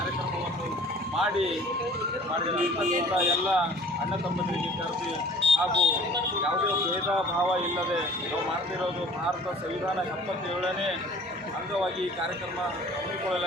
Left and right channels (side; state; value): both; normal; correlation 0.49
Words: ಮಾಡಿದ ಎಲ್ಲ ಅಣ್ಣ ತಮ್ಮಂದಿರಿಗೆ ಕರೆದಿ ಹಾಗೂ ಯಾವುದೇ ಭೇದ ಭಾವ ಇಲ್ಲದೆ ನಾವು ಮಾಡ್ತಿರೋದು ಭಾರತ ಸಂವಿಧಾನ 77ನೇ ಅಂಗವಾಗಿ ಈ ಕಾರ್ಯಕ್ರಮ